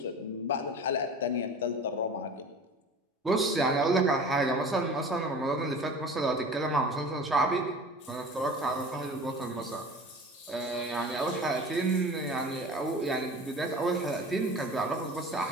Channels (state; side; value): normal; both; correlation 0.40